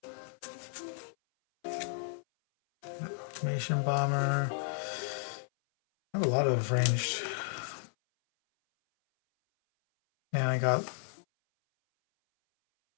Information Bomber. I have a lot of ranged. And I got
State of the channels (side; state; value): right; silent; 56 dB below the other